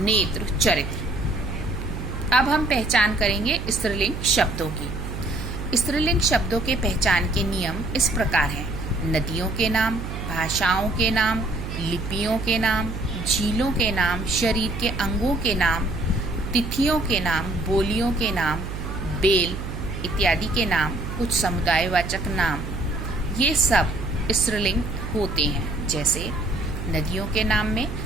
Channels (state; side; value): noise; right; hum, 7 dB below the sound